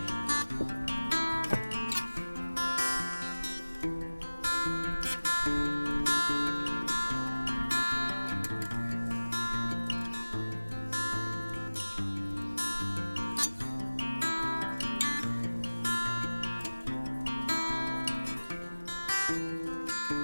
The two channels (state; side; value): inverted; both; correlation -1.00